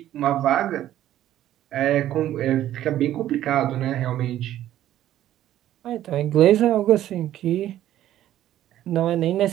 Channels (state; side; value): quieter; left; 12.6 dB